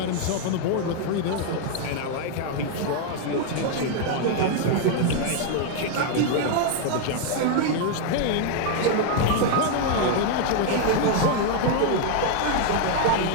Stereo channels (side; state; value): both; different; correlation 0.00